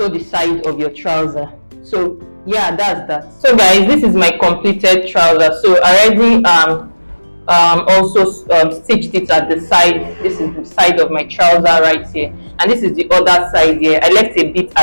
side of your trouser So yeah, that's that. So guys, this is my completed trouser. So I already also stitched it at the side. This is the side of my trouser right here, and this is the other side here. I left a bit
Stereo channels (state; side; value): inverted; both; correlation -1.00